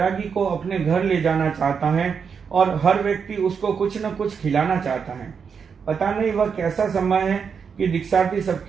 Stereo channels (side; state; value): left; quieter; 6.3 dB